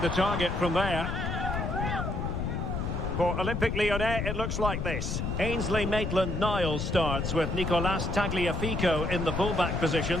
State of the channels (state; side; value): noise; left; rumble, 2 dB below the sound